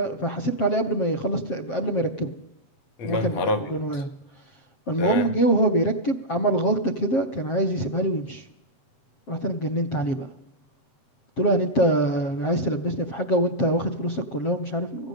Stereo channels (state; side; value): late; right; 7.6 ms